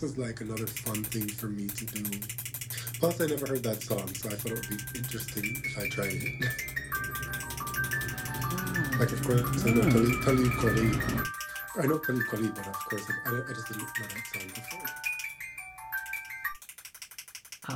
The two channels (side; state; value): both; identical; correlation 1.00